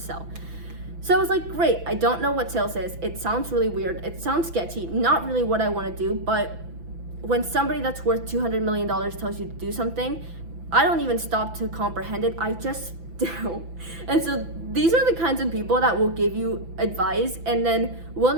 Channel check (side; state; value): left; late; 6.0 ms